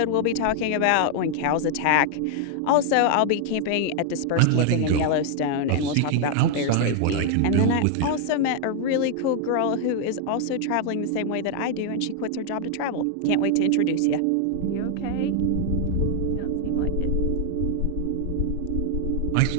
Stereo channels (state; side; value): different; both; correlation 0.00